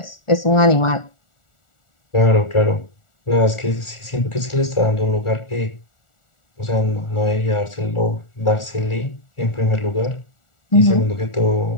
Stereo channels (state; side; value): late; right; 1.4 ms